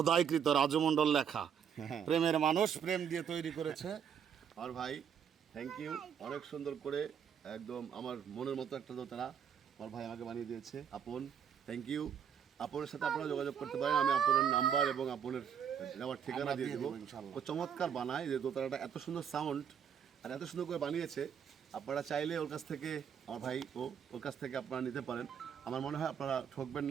রাজু মণ্ডল লেখা, প্রেমের মানুষ, প্রেম দিয়ে তৈরি করেছে। আর ভাই থ্যাংক ইউ, অনেক সুন্দর করে একদম আমার মনের মতো একটা দোতারা আমার ভাই আমাকে বানিয়ে দিয়েছে। আপন থ্যাংক ইউ। আপনের সাথে আপনারা যোগাযোগ করতে পারেন, আমি আপনের নাম্বার এবং আপনের নেওয়ার ঠিকানা দিয়ে দেবো। ও চমৎকার বানায়, যে দোতারাটা এত সুন্দর সাউন্ড আর এত সুন্দর করে বানিয়েছে। আপনারা চাইলে ওর কাছ থেকে, আমার ভাই ওর কাছ থেকে আপনারা নিতে পারেন। আমার মনে হয় আপনারা ঠকবেন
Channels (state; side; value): quieter; left; 8.0 dB